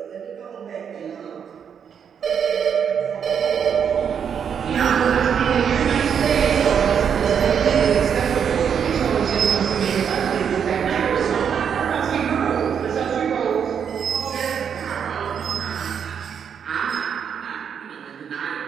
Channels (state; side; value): quieter; left; 7.6 dB